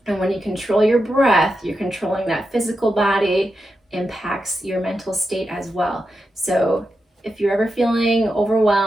And when you control your breath, you're controlling that physical body, impacts your mental state as well. So if you're ever feeling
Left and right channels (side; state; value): both; normal; correlation 0.88